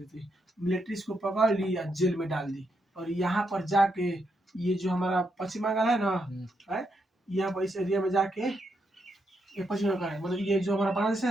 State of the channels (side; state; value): both; normal; correlation 0.80